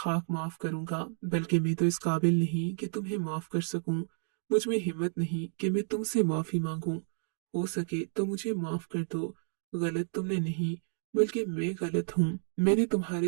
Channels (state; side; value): silent; left; digital silence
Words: माफ करूंगा, बल्कि मैं तो इस काबिल नहीं कि तुम्हें माफ कर सकूं। मुझ में हिम्मत नहीं कि मैं तुमसे माफी मांगूं। हो सके तो मुझे माफ कर दो। गलत तुमने नहीं, बल्कि मैं गलत हूँ। मैंने